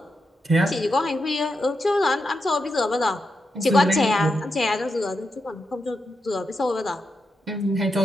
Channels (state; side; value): normal; both; correlation 0.86